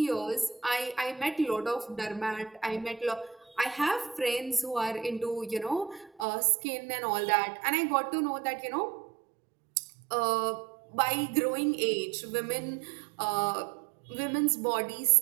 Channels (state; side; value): drops out; left; at 6.2 s